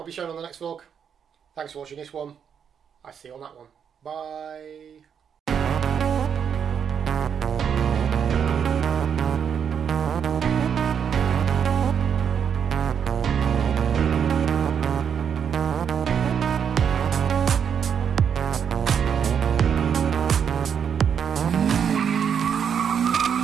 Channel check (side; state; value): left; quieter; 7.6 dB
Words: be shown on the next vlog. Thanks for watching this one. I'll see you on that one. Bye.